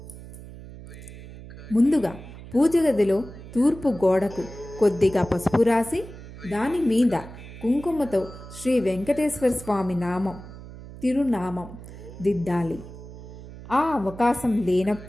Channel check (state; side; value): noise; right; hum, 15 dB below the sound